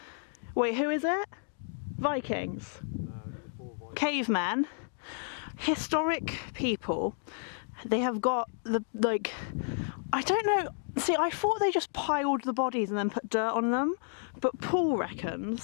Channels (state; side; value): silent; right; digital silence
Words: Wait, who is it? Vikings? Cavemen? Historic people. They have got the, like, I don't know. See, I thought they just piled the bodies and then put dirt on them. But Paul